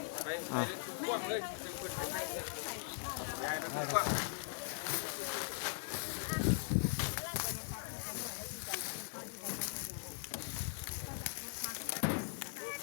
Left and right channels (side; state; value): right; silent; digital silence